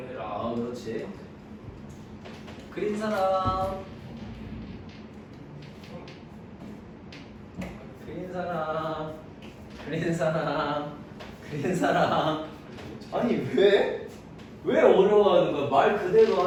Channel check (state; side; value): identical; both; correlation 1.00